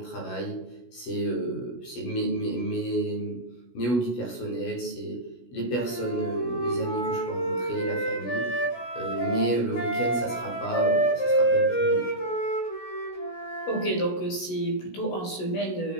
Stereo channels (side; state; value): right; late; 16 ms